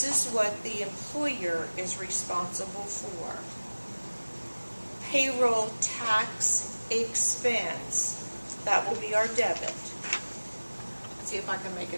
is what the employer is responsible for. Payroll tax expense. That will be our debit. Let's see if I can make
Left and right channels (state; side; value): inverted; both; correlation -1.00